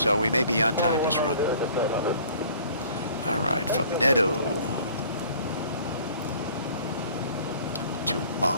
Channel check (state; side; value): inverted; both; correlation -0.51